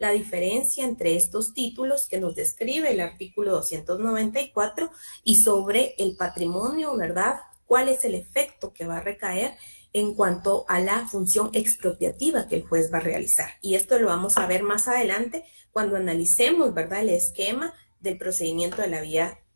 diferencia entre estos títulos que nos describe el artículo 294 y sobre el patrimonio, ¿verdad?, cuál es el efecto que va a recaer en cuanto a la función expropiativa que el juez va a realizar. Y esto lo vamos a ver más adelante cuando analicemos, ¿verdad?, el esquema del procedimiento de la vía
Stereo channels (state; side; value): inverted; both; correlation -1.00